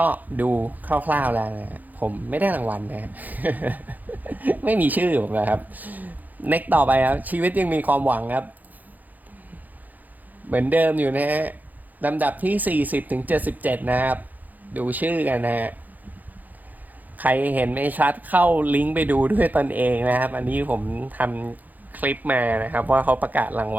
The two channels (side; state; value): left; late; 0.082 ms